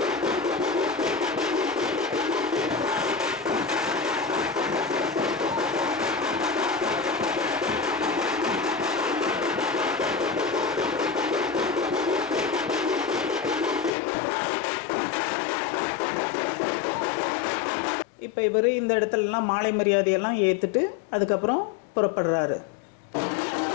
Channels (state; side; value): drops out; right; at 13.9 s